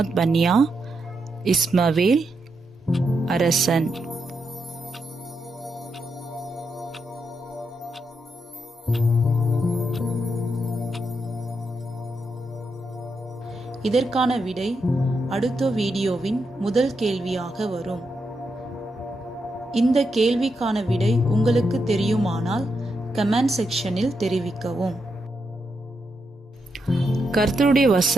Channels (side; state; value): both; normal; correlation 0.83